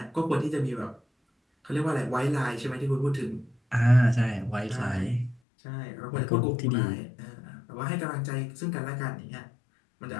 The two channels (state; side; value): drops out; right; at 5.4 s